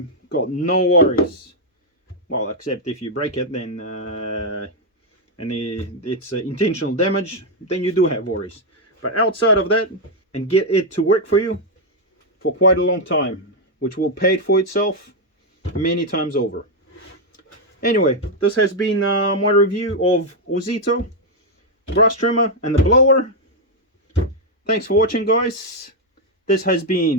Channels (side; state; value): both; normal; correlation 0.00